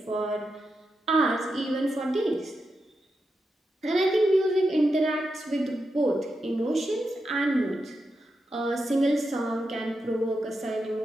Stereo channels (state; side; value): normal; both; correlation 0.87